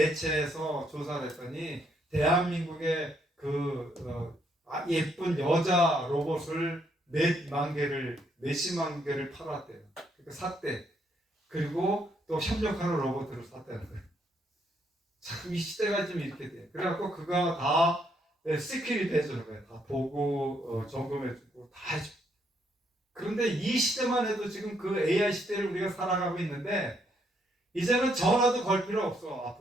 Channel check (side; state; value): both; normal; correlation 0.73